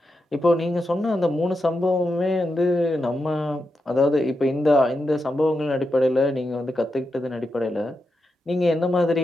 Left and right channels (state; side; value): normal; both; correlation 0.87